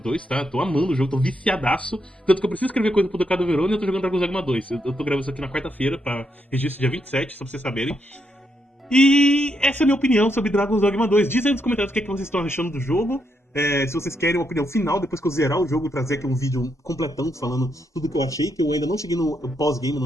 tá? Tô amando o jogo, tô viciadaço. Tanto que eu preciso escrever coisa pro Ducado Verona e eu tô jogando Dragon's Dogma 2. Eu tô gravando isso aqui na quarta-feira, pra registro dia 27, só pra vocês saberem. E essa é a minha opinião sobre Dragon's Dogma 2. Diz aí nos comentários o que, é que vocês estão achando do jogo. Se vocês querem uma opinião final, depois que eu zerar o jogo, trazer aqui um vídeo completão falando tudo que eu achei, que eu ainda não cheguei no pós-game, no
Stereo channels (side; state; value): both; normal; correlation 0.80